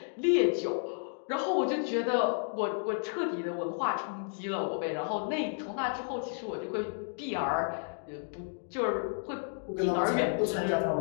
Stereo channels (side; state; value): right; silent; digital silence